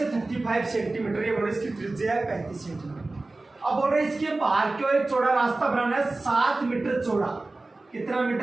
है 35 सेंटीमीटर, ये बोल रहे इसकी त्रिज्या है 35 सेंटीमीटर। अब बोल रहे इसके बाहर की ओर एक चौड़ा रास्ता बनाना है 7 मीटर चौड़ा। कितना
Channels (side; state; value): left; quieter; 3.1 dB